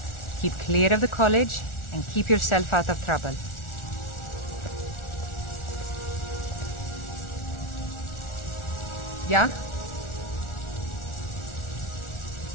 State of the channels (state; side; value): late; right; 1.4 ms